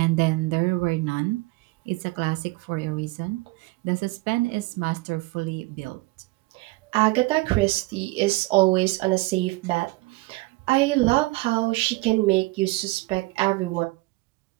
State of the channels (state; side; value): quieter; left; 22.0 dB